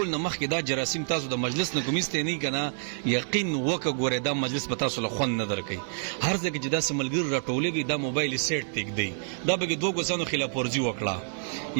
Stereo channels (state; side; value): silent; left; digital silence